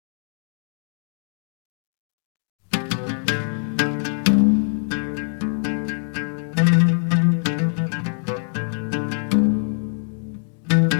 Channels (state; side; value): silent; right; digital silence